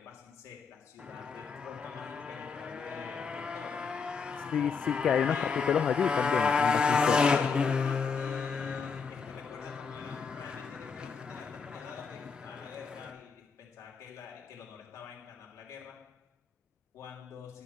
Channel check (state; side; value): quieter; right; 5.4 dB